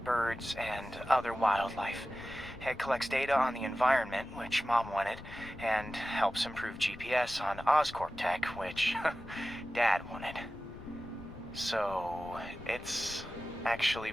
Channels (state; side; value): noise; left; rumble, 16 dB below the sound